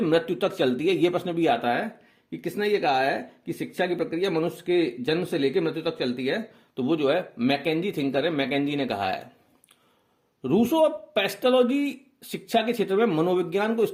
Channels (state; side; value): identical; both; correlation 1.00